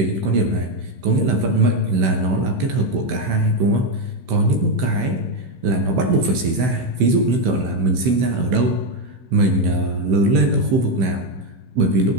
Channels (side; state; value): left; late; 16 ms